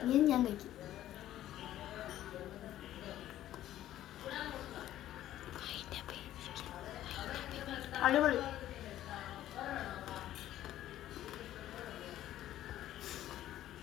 ഇനി ഞാൻ കഴിക്കും. അടിപൊളി.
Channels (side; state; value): right; quieter; 13.0 dB